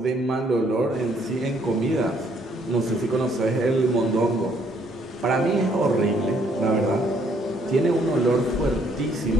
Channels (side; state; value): both; normal; correlation 0.67